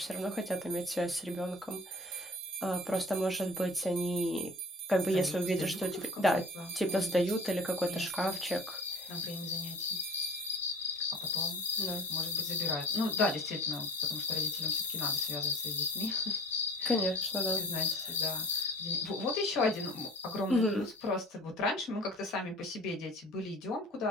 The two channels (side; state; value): both; normal; correlation 0.41